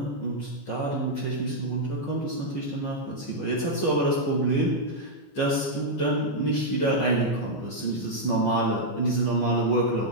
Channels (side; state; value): right; late; 15 ms